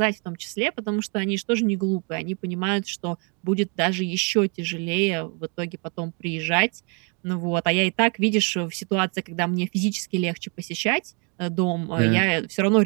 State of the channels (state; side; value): quieter; left; 35.8 dB